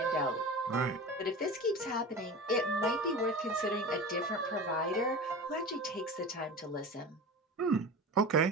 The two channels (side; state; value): both; normal; correlation 0.32